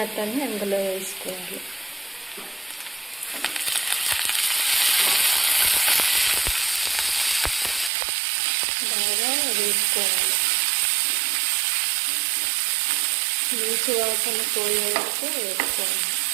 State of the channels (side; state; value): left; drops out; at 7.9 s